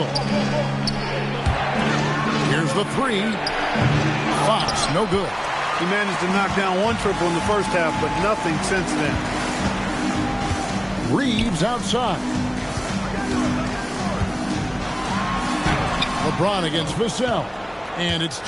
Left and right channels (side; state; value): both; identical; correlation 1.00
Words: Here's the three. Fox, no good. He managed to knock down one triple in the first half, but nothing since then. Reeves outside. LeBron against Vassell. And it's